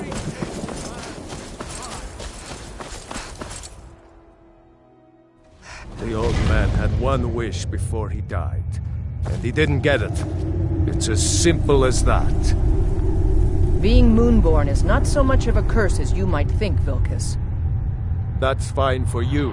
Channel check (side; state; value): both; identical; correlation 1.00